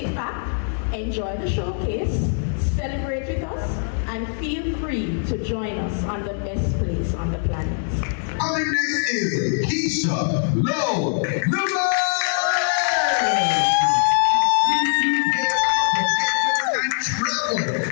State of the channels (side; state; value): right; silent; digital silence